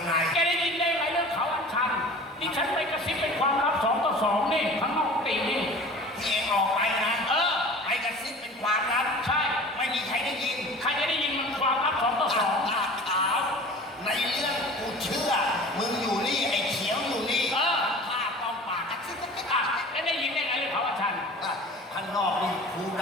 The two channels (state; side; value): normal; both; correlation 0.41